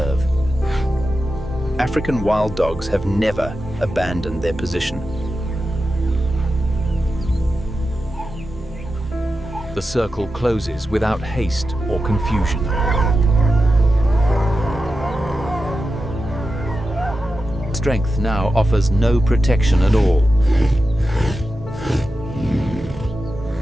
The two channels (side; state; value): both; normal; correlation 0.91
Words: African wild dogs have never abandoned their position. The circle closes without haste or confusion. Strength now offers no protection at all.